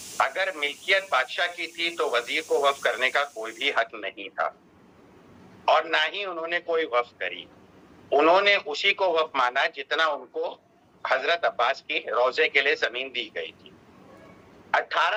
अगर मिल्कियत बादशाह की थी तो वजीर को वक्फ करने का कोई भी हक नहीं था और ना ही उन्होंने कोई वक्फ करी। उन्होंने उसी को वक्फ माना जितना उनको हजरत अब्बास की रोजे के लिए जमीन दी गई थी।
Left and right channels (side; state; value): both; identical; correlation 1.00